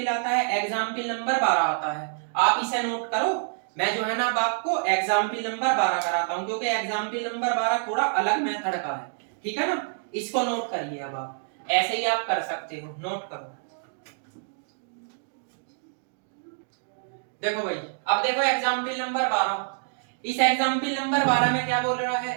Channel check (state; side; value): silent; left; digital silence